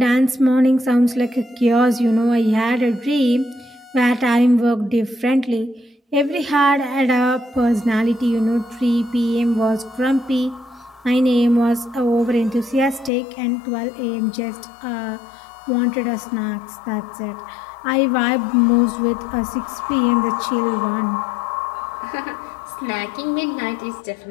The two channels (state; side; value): drops out; right; at 13.1 s